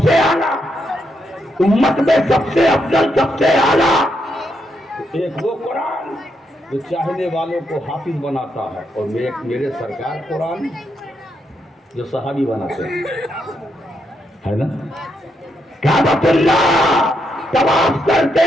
سے اعلیٰ، امت میں سب سے افضل، سب سے اعلیٰ۔ ایک وہ قرآن جو چاہنے والوں کو حافظ بناتا ہے، اور میرے سرکار قرآن جو صحابی بناتے ہیں، ہے نا؟ کعبۃ اللہ طواف کرتے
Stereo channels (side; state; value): both; normal; correlation 0.80